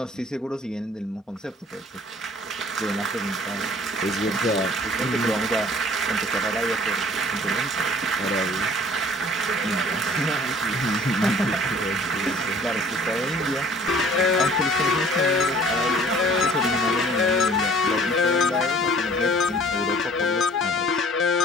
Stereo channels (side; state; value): both; normal; correlation 0.52